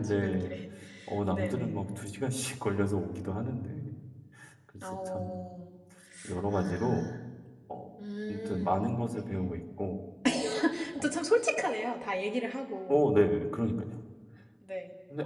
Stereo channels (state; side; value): identical; both; correlation 1.00